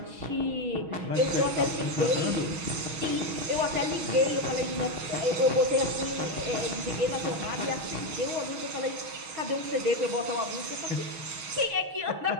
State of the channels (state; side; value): late; left; 6.3 ms